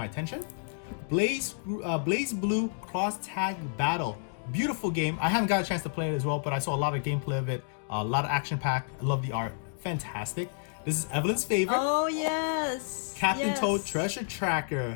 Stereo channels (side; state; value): right; silent; digital silence